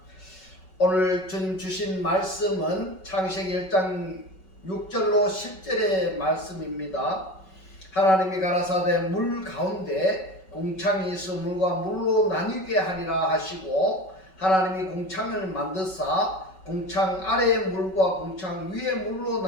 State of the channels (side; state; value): right; late; 5.3 ms